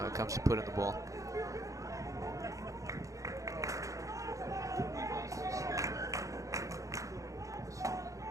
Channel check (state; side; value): late; left; 0.16 ms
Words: comes to put in the ball.